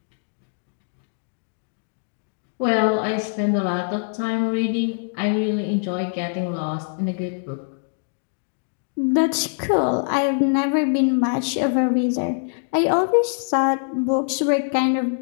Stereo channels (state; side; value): silent; right; digital silence